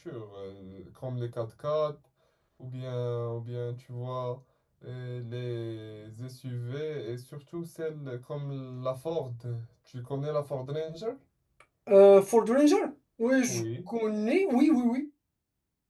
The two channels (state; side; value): identical; both; correlation 1.00